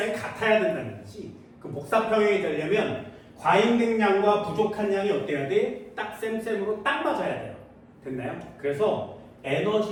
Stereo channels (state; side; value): identical; both; correlation 1.00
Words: 같아야 된다는 얘기지. 그 복사 평형이 되려면 과잉된 양과 부족한 양이 어때야 돼? 딱 쌤쌤으로 딱 맞아야 돼요. 됐나요? 그래서